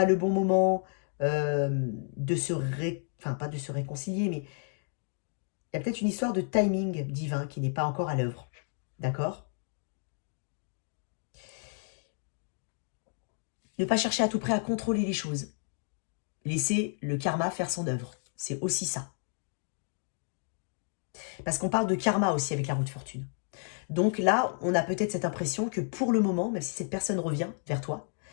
le bon moment de se enfin, pas de se réconcilier, mais il y a peut-être une histoire de timing divin qui n'est pas encore à l'œuvre. D'accord? Ne pas chercher à tout prix à contrôler les choses. Laisser le karma faire son œuvre. C'est aussi ça. Parce qu'on parle de karma aussi avec la roue de fortune. Donc là, on a peut-être cette impression que pour le moment, même si cette personne revient vers toi,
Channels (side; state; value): right; silent; 57 dB below the other